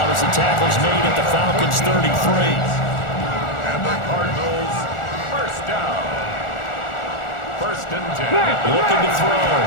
as the tackle's made at the Falcons' 33. And the Cardinals, 1st down. 1st and 10. Looking to throw.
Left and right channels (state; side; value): late; right; 1.4 ms